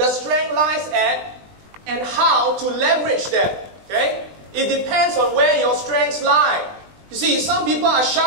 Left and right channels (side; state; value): left; late; 20 ms